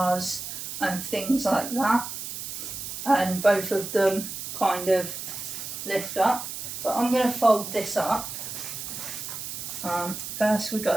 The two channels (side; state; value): right; noise; hiss, 7 dB below the sound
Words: and things like that, and both of them kind of lift up. But I'm going to fold this up. First we've